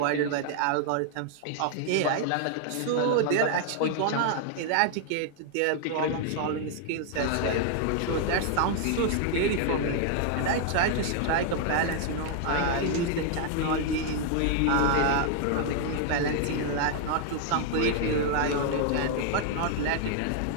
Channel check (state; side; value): different; both; correlation 0.00